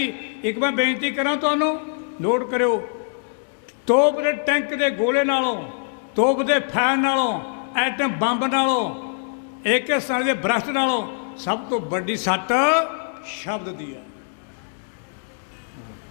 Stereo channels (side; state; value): right; silent; digital silence